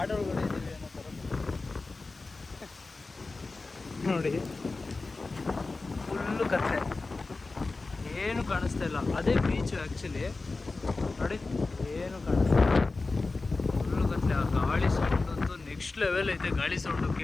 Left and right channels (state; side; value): quieter; right; 3.6 dB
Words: ಇದ್ದೀವಿ ಅನ್ನೋ ಥರ ನೋಡಿ. ಫುಲ್ಲು ಕತ್ಲೆ, ಏನು ಕಾಣಿಸ್ತಾ ಇಲ್ಲ. ಅದೇ ಬೀಚು ಆ್ಯಕ್ಚುಲಿ ನೋಡಿ, ಏನು ಕಾಣಿಸ್ತಾ ಇಲ್ಲ, ಫುಲ್ಲು ಕತ್ಲೆ. ಆ ಗಾಳಿ ಸೌಂಡ್ ಅಂತೂ ನೆಕ್ಸ್ಟ್ ಲೆವೆಲ್ ಐತೆ. ಗಾಳಿ ಸೌಂಡು